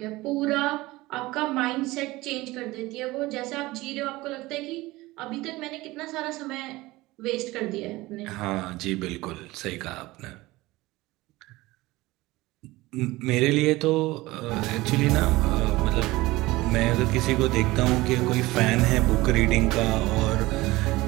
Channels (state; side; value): quieter; left; 19.7 dB